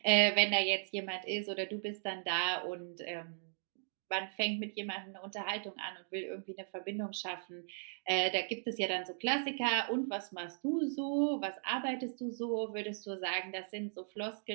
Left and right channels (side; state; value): left; silent; digital silence